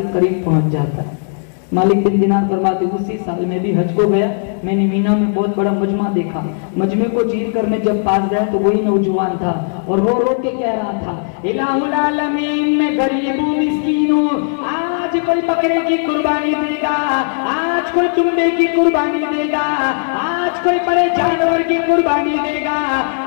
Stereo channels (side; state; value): right; silent; digital silence